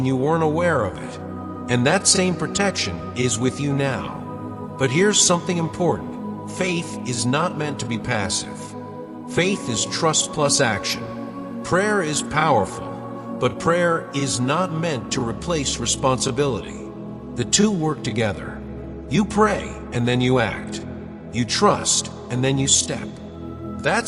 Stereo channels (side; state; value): both; identical; correlation 1.00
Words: you weren't aware of it. And that same protection is with you now. But here's something important. Faith is not meant to be passive. Faith is trust plus action. Prayer is powerful, but prayer is not meant to replace responsibility. The two work together. You pray and then you act. You trust and then you step.